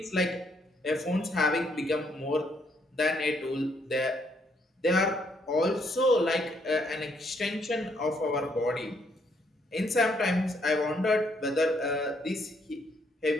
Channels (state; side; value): normal; both; correlation 0.71